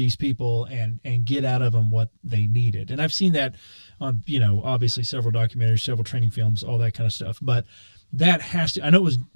people and get out of them what they needed. And I've seen that on, obviously several documentaries, several training films, all that kind of stuff. But that has to, I know it was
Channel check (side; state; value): both; inverted; correlation -1.00